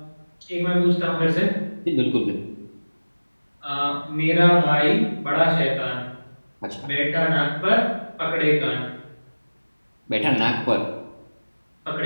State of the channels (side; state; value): both; inverted; correlation -1.00